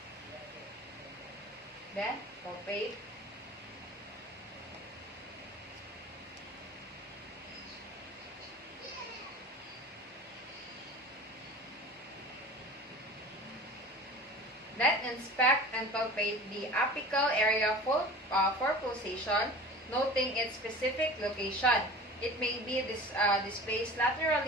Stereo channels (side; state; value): both; normal; correlation 0.39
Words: Then, palpate. Then, inspect and palpate the apical area for pulsation, noting its specific location. It may be displaced